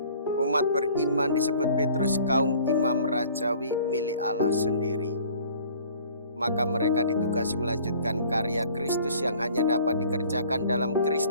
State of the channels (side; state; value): both; inverted; correlation -0.52